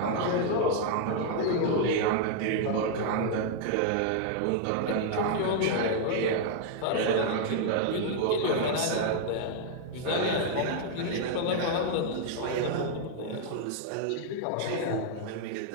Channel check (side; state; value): both; different; correlation 0.00